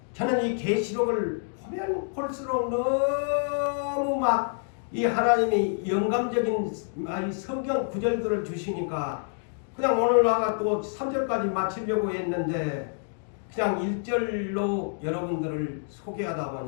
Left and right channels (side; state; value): right; silent; digital silence